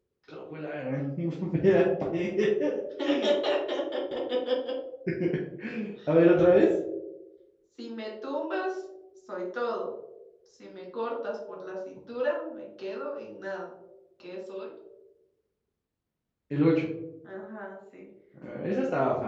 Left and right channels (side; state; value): both; identical; correlation 1.00